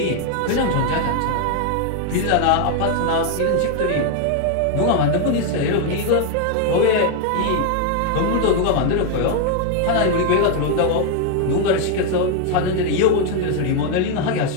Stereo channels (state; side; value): different; both; correlation 0.00